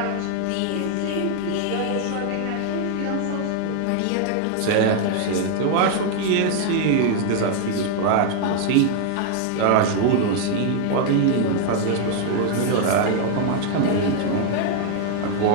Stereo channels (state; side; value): different; both; correlation 0.00